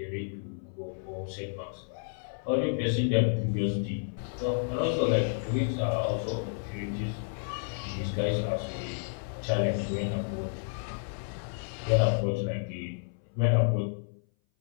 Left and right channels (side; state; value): right; silent; 57 dB below the other